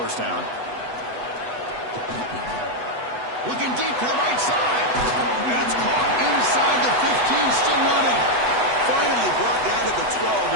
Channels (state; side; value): late; left; 8.1 ms